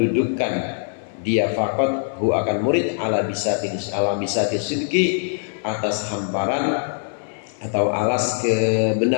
dia faqat hu akan murid ala bisati sidqi atas hamparan atau alas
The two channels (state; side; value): silent; right; 56 dB below the other